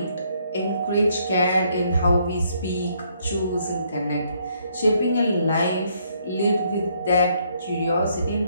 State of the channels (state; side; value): inverted; both; correlation -0.70